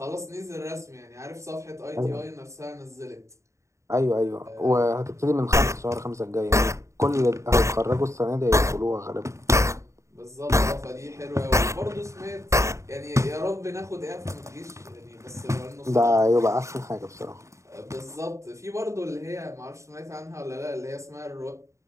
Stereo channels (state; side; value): late; left; 0.14 ms